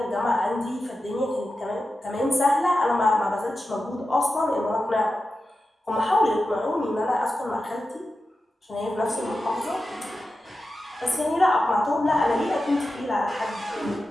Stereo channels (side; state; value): both; normal; correlation 0.92